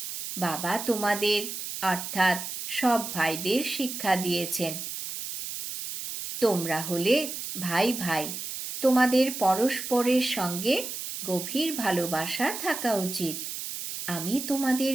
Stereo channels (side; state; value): right; noise; hiss, 7 dB below the sound